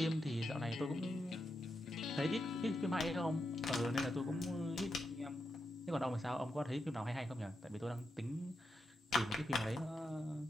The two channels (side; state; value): both; normal; correlation 0.86